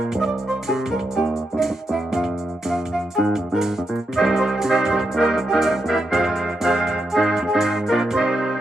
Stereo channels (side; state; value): both; normal; correlation 0.84